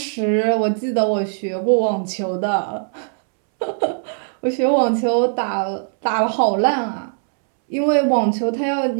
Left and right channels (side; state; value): left; silent; 66 dB below the other